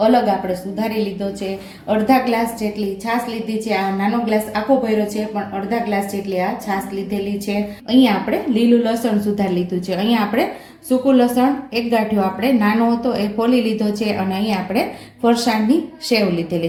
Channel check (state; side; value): identical; both; correlation 1.00